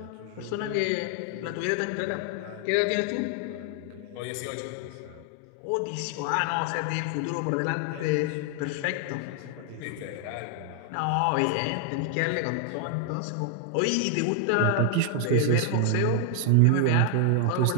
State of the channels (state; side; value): different; both; correlation 0.00